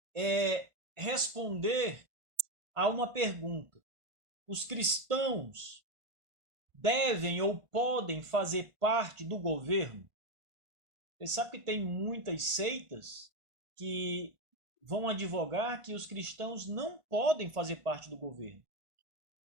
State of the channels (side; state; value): left; late; 1.5 ms